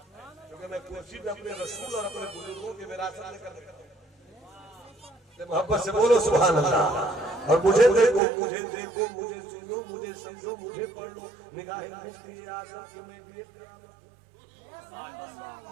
क्योंकि मैं कुर्सी पे अपने रसूल और अपने बुजुर्गों की विरासत लेकर मोहब्बत से बोलो सुभान अल्लाह। और मुझे देखो, मुझे देखो, मुझे सुनो, मुझे समझो, मुझे पढ़ लो, निगाहें मिलती है आशा कि मैं भी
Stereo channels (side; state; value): left; drops out; at 8.2 s